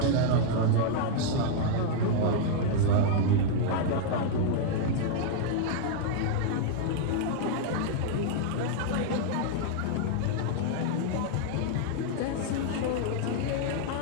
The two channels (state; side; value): different; both; correlation -0.01